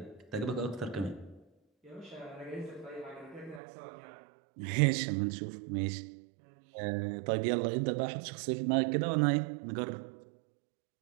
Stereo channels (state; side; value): drops out; left; at 3.6 s